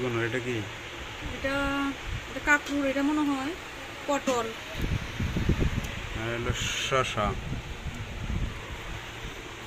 এটা কি এটা এটা কাঁকরুল এটা মনে হয় পটল আর হলো শসা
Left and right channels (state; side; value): identical; both; correlation 1.00